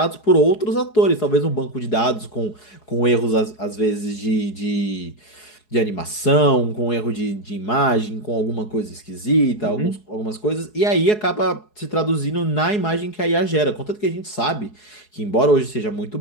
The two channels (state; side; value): late; right; 4.7 ms